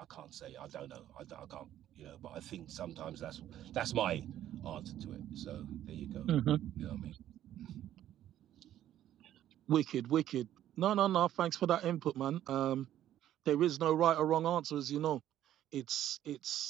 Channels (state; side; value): quieter; left; 12.0 dB